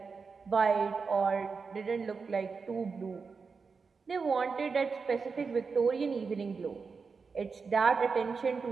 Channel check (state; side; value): quieter; left; 5.0 dB